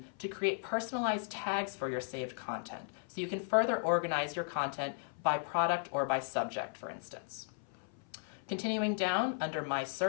to create personalized tags for your saved content, so you can further organize your content by product or by subject, for instance. Continuing down under My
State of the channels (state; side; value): silent; right; 54 dB below the other